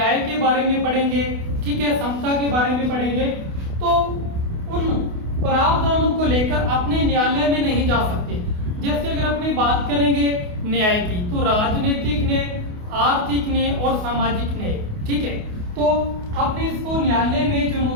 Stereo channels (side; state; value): left; late; 28 ms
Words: के बारे में पढ़ेंगे, ठीक है, समता के बारे में पढ़ेंगे, तो उन प्रावधानों को लेकर अपने न्यायालय में नहीं जा सकते। जैसे अगर अपनी बात करेंगे न्याय की, तो राजनीतिक न्याय, आर्थिक न्याय और सामाजिक न्याय, ठीक है, तो अपने इसको न्यायालय में